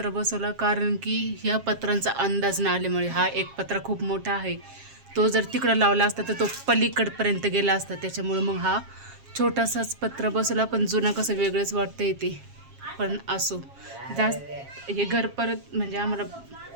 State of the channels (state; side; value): late; left; 7.4 ms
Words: बसवला, कारण की ह्या पत्रांचा अंदाज न आल्यामुळे। हा एक पत्रा खूप मोठा आहे, तो जर तिकडं लावला असता तर तो पलीकडपर्यंत गेला असता, त्याच्यामुळे मग हा छोटासाच पत्र बसवला। पण जुना कसं वेगळंच वाटतं येते, पण असो, जास्त हे घर परत म्हणजे आम्हाला